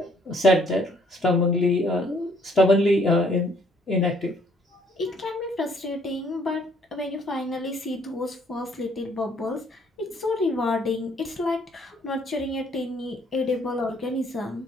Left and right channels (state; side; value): normal; both; correlation 0.64